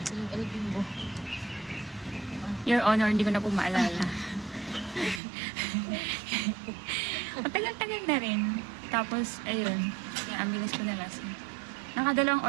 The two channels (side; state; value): left; drops out; at 5.2 s